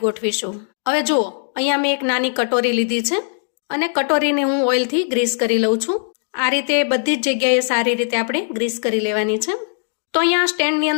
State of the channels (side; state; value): right; silent; digital silence